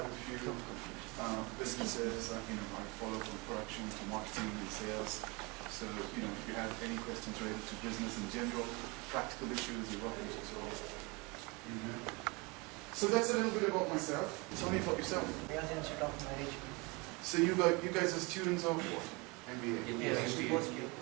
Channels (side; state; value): left; quieter; 27.4 dB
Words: a few businesses. I follow from production to marketing and sales. So if you have any questions related to business in general, practical issues, you're welcome to solve. So that's a little bit about myself. Tell me about yourself. I was Institute of Management. So you guys are students of what? MBA? Yes,